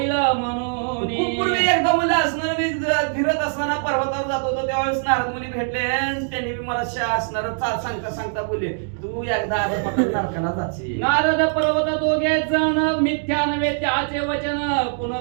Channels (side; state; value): left; silent; digital silence